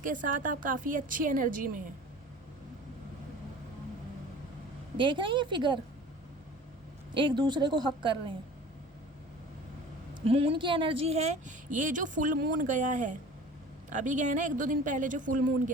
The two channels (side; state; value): both; normal; correlation 0.42